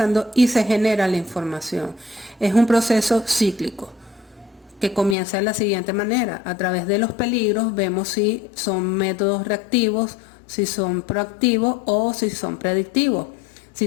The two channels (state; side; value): drops out; right; at 5.2 s